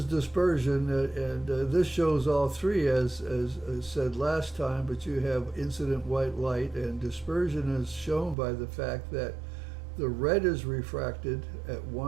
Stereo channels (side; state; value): left; drops out; at 8.3 s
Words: dispersion, and this shows all 3 as said last time, but you have incident white light, and dispersion is shown by the fact that the red is refracted at